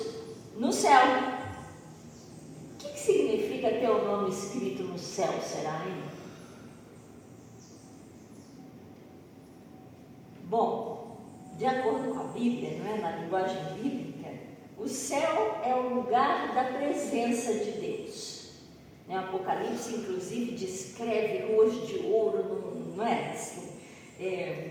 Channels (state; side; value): identical; both; correlation 1.00